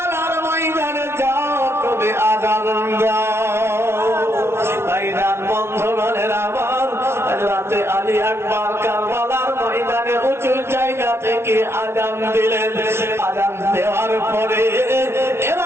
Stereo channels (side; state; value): left; late; 0.12 ms